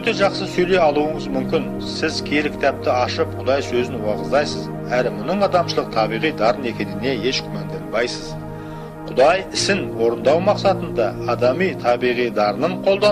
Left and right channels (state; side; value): identical; both; correlation 1.00